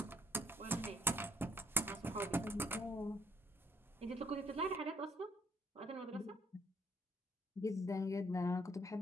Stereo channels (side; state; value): both; normal; correlation 0.70